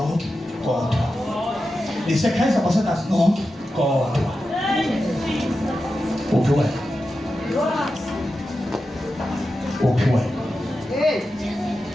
kodwa. Nisi-praise ambassadors nonke kodwa. Uphi wena? Uphi wena?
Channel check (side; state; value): both; normal; correlation 0.91